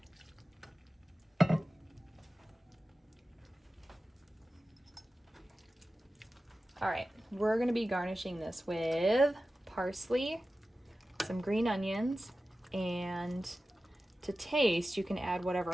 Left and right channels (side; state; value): both; normal; correlation 0.94